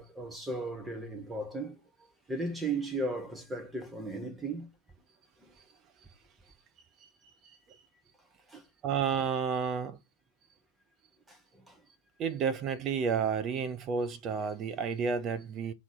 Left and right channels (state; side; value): quieter; left; 4.9 dB